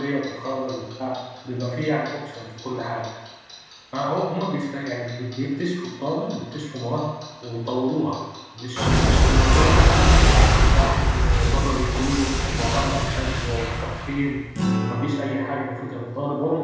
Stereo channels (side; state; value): both; identical; correlation 1.00